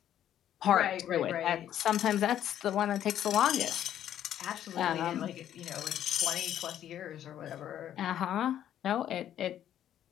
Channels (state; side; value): quieter; right; 10.9 dB